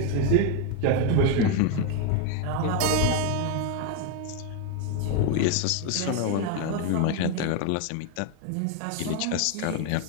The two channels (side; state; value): both; different; correlation 0.01